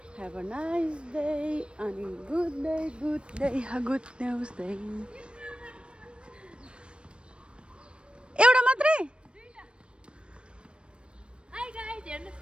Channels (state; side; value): late; left; 0.057 ms